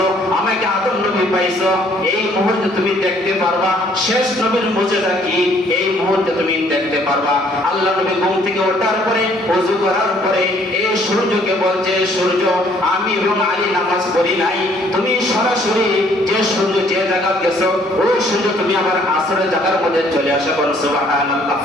আমাকে আদম নবী পাইছো। এই মুহূর্তে তুমি দেখতে পারবা শেষ নবীর মুজিজা কি, এই মুহূর্তে তুমি দেখতে পারবা। আল্লাহ নবী ঘুম থেকে ওঠার পরে ওযু করার পরে এই সূর্যকে বলছে, সূর্য, আমি এবং আলী নামাজ পড়ি নাই, তুমি সরাসরি যে সূর্য যে জায়গা গেছো ওই সূর্য তুমি আবার আসরের জায়গার মধ্যে চলে আসা করো। সুবহানাল্লাহ।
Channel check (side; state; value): both; normal; correlation 0.62